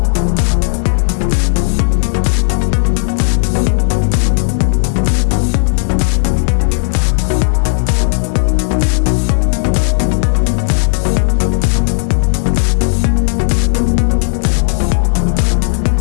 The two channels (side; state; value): right; silent; digital silence